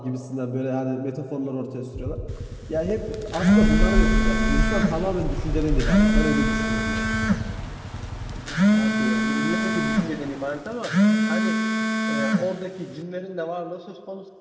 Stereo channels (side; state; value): both; identical; correlation 1.00